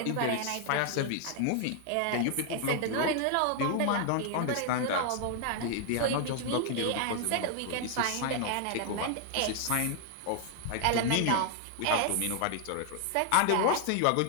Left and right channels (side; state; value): both; different; correlation 0.00